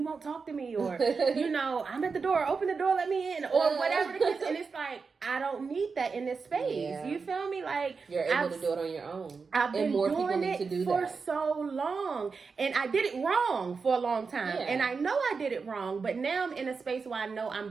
won't talk to me, or, I'm at the door, open the door, let me in, or whatever the case. And it's like, like, I don't need that in this space. Yeah. You feel me? Like, you're able to do it on your own. I've been more doing people need it to do for that. so long, and I did it wrong for a long time, Yeah. and I know I did it wrong, but now I'm in a space where I know I'm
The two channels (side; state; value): left; quieter; 4.9 dB